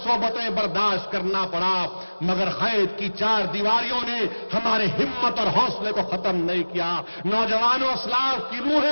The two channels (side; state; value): both; inverted; correlation -1.00